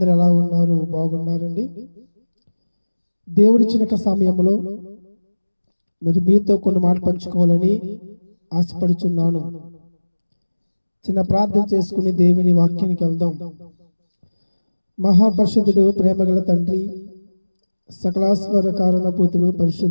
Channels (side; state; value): both; inverted; correlation -1.00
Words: ఎలా ఉన్నారు? బాగున్నారండి. దేవుడిచ్చిన సమయంలో మరి మీతో కొన్ని మాటలు పంచుకోవాలని ఆశపడుచున్నాను. చిన్న ప్రార్థన చేసుకుని దేవుని వాక్యానికి వెళ్దాం. మహాపరిశుద్ధుడు, ప్రేమగల తండ్రి, సకలాశ్వర కారణభూతుడు,